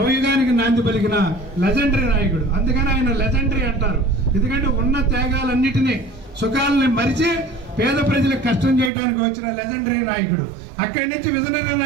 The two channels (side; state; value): left; drops out; at 8.9 s